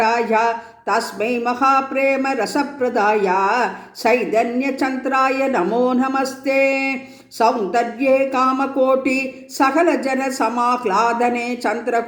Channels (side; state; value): both; identical; correlation 1.00